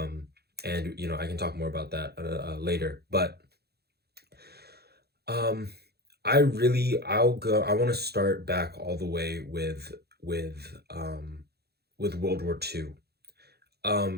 I can talk more about that later, but um I want to start back all the way with World War II.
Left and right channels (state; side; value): late; left; 0.47 ms